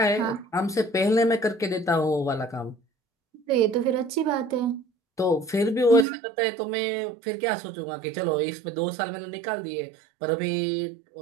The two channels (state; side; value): drops out; left; at 6.1 s